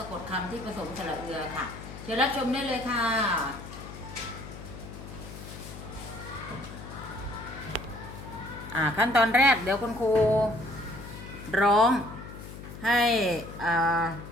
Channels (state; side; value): noise; left; hum, 13 dB below the sound